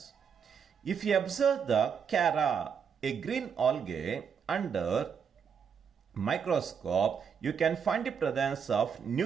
If you observe the Chara, a green algae, under microscope, you can find the presence of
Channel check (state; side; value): quieter; left; 6.9 dB